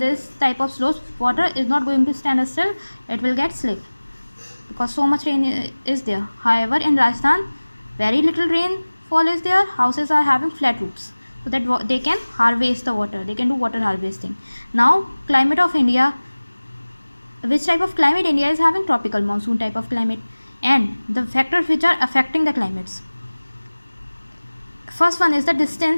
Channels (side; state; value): both; inverted; correlation -1.00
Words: type of slopes water is not going to stand still, it will get slip because so much rain is there. However, in Rajasthan very little rainfall is there. Houses are having flat roofs so that they can harvest the water, they can do water harvesting. Now climate of India, which type of climate India is having? Tropical monsoon type of climate. And the factors which are affecting the climates, first one is the